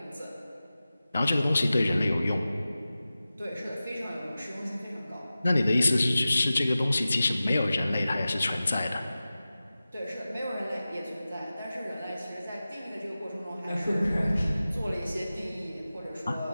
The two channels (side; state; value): both; inverted; correlation -0.95